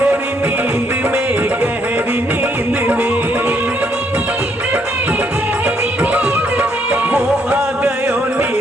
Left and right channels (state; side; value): normal; both; correlation 0.71